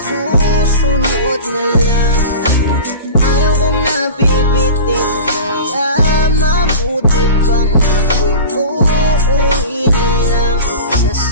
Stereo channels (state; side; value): inverted; both; correlation -0.34